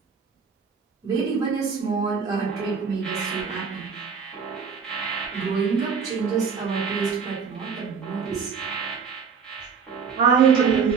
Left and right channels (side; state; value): left; quieter; 6.0 dB